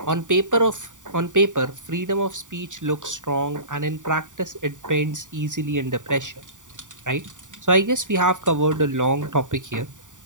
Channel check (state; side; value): late; left; 0.87 ms